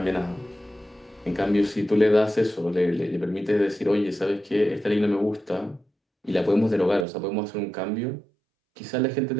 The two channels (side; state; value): left; drops out; at 7.1 s